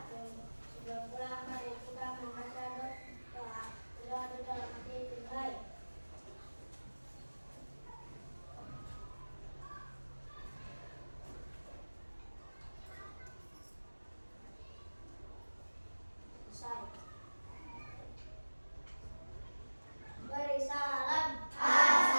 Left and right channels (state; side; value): inverted; both; correlation -1.00